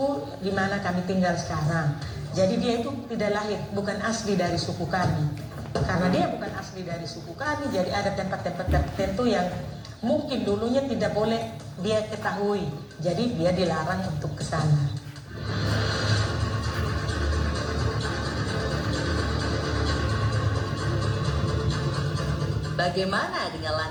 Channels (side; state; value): both; identical; correlation 1.00